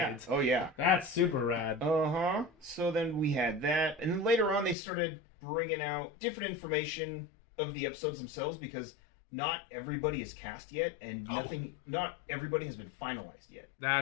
Yeah. Oh yeah. That's super rad. Uh-huh. So then we had that, and then later on they started bringing out different information of the episodes themselves because not everybody is cast yet, and not everybody has been finalized yet.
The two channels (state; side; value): drops out; right; at 4.8 s